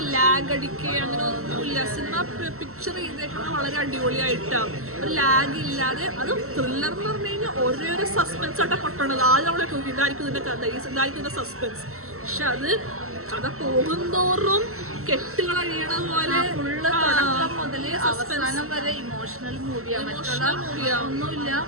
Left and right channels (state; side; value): late; left; 0.63 ms